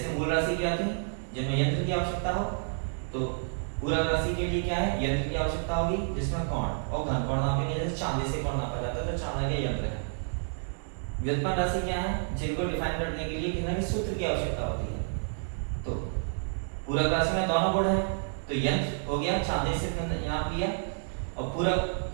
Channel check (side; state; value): left; silent; digital silence